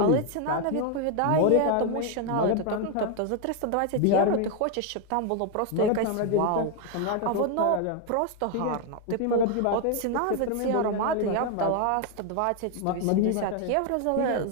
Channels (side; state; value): both; different; correlation 0.01